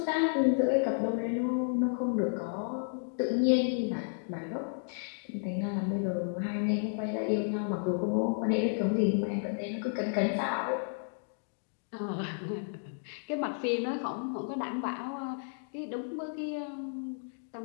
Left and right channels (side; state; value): right; silent; digital silence